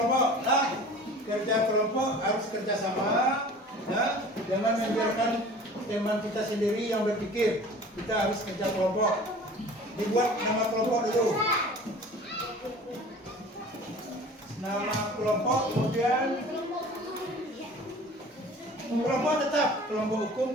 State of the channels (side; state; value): both; normal; correlation 0.43